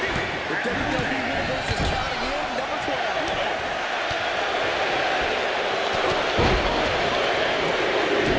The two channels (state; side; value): identical; both; correlation 1.00